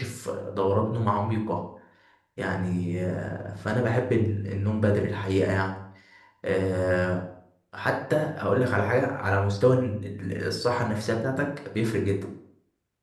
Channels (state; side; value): identical; both; correlation 1.00